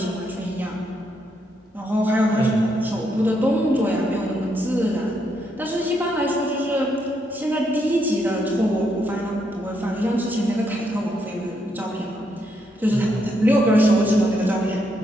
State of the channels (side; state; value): both; normal; correlation 0.77